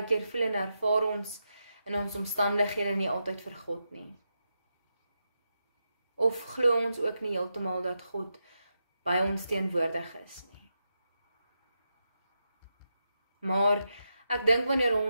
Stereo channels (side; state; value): both; inverted; correlation -0.87